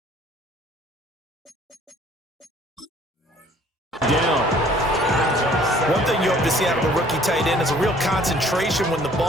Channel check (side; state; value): both; normal; correlation 0.56